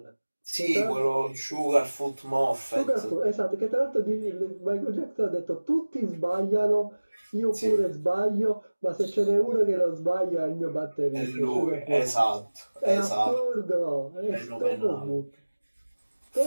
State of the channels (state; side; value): inverted; both; correlation -1.00